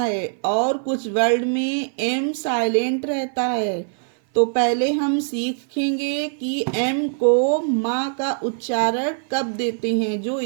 और कुछ वर्ड में एम साइलेंट रहता है। तो पहले हम सीखेंगे कि एम को माँ का उच्चारण कब देते हैं, जो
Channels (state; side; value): silent; left; 57 dB below the other